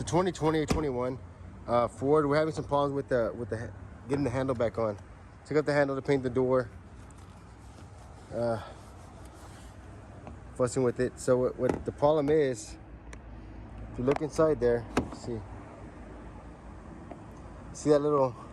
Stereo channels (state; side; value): identical; both; correlation 1.00